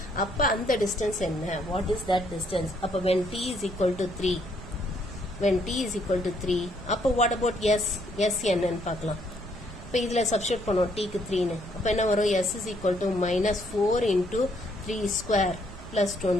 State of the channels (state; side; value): noise; right; rumble, 14 dB below the sound